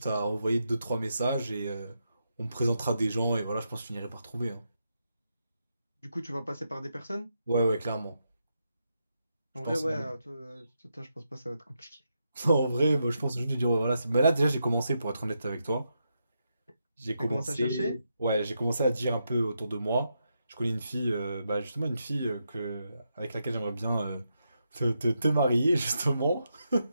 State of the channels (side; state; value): both; inverted; correlation -0.83